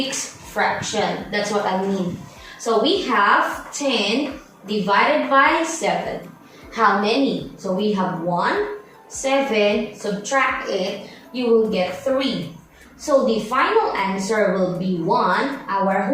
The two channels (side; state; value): both; identical; correlation 1.00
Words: fraction. That's what I mean. So we have 10 divided by 7. How many? So we have 1, 7, subtract it, you will get 3. So the final answer will be 1, our